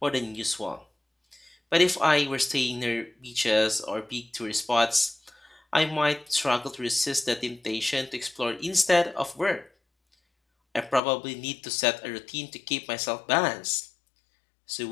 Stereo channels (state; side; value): drops out; right; at 11.0 s